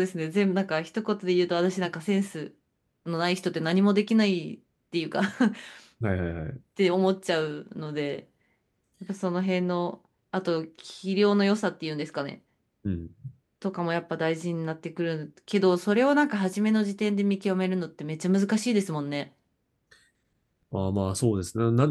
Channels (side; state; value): both; identical; correlation 1.00